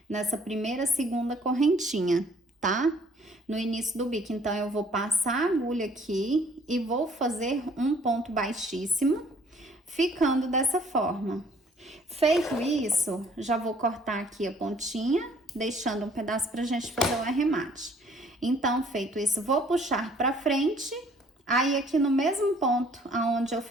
nessa primeira, segunda correntinha, tá? No início do bico. Então, eu vou passar a agulha aqui e vou fazer um ponto baixíssimo, ficando dessa forma. Feito isso, já vou cortar aqui a pontinha, deixando um pedaço pra gente fazer o arremate. Então, feito isso, vou puxar pra frente. Aí, aqui no mesmo ponto, aonde eu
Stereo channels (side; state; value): both; normal; correlation 0.59